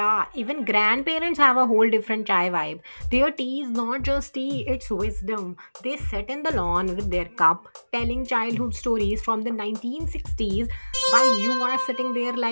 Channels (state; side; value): inverted; both; correlation -1.00